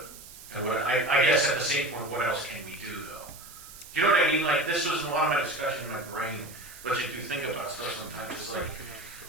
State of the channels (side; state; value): right; noise; hiss, 16 dB below the sound